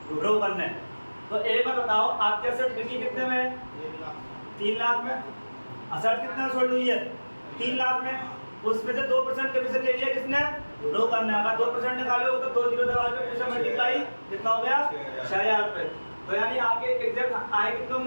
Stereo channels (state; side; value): inverted; both; correlation -1.00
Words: ब्रोकर ने। तो एक बार बताओ, आपके असेट बिकी कितने में? 3 लाख में। असेट कितना सोल्ड हुई है? 3 लाख में। उसमें से 2% कमीशन ले लिया किसने? ब्रोकर ने। अगर 2% निकालोगे तो 2 जीरो दबा के पैसा मल्टीप्लाई कितना हो गया? 6,000 रुपये। तो यानी आपके एग्जैक्ट आए कितने